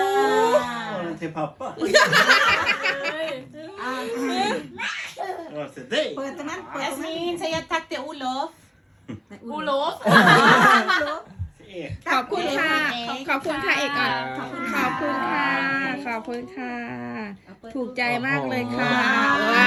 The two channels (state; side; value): identical; both; correlation 1.00